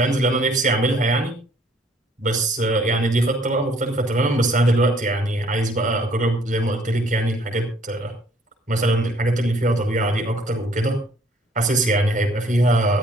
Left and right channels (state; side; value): normal; both; correlation 0.61